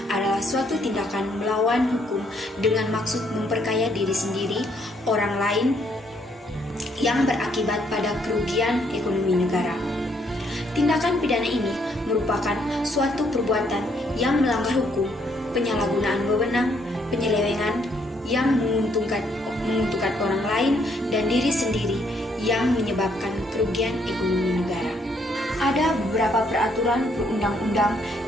adalah suatu tindakan melawan hukum dengan maksud memperkaya diri sendiri, orang lain yang berakibat pada kerugian ekonomi negara. Tindakan pidana ini merupakan suatu perbuatan yang melanggar hukum, penyalahgunaan wewenang, penyelewengan yang menguntungkan orang lain dan diri sendiri yang menyebabkan kerugian ekonomi negara. Ada beberapa peraturan perundang-undang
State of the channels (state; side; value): normal; both; correlation 0.70